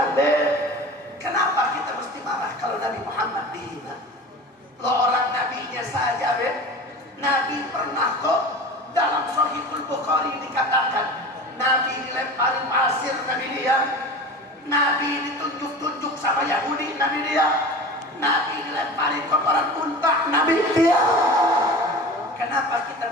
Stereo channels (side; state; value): both; normal; correlation 0.35